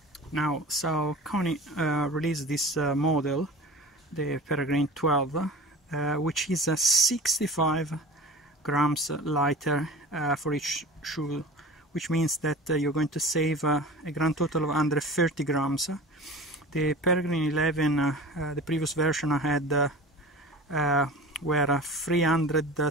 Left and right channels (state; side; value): normal; both; correlation 0.37